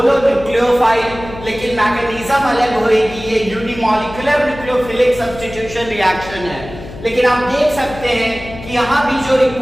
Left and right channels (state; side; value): noise; left; hum, 14 dB below the sound